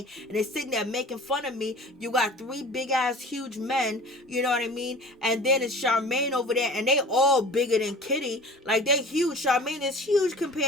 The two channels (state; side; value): normal; both; correlation 0.42